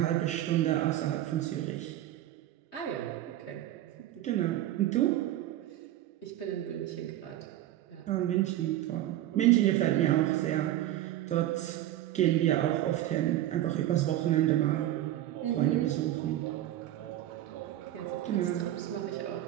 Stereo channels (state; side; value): quieter; left; 13.6 dB